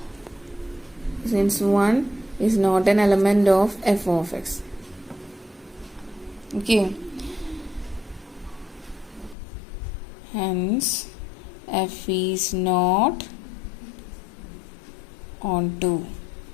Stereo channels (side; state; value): right; drops out; at 9.3 s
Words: Since 1 is not an element of f of x. Okay. Hence f is not onto.